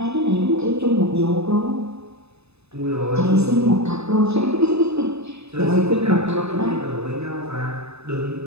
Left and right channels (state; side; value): late; left; 0.80 ms